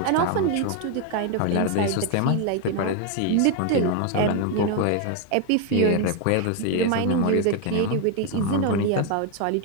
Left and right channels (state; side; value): different; both; correlation 0.01